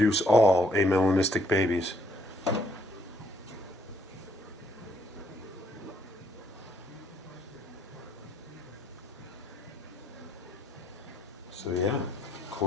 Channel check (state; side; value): normal; both; correlation 0.68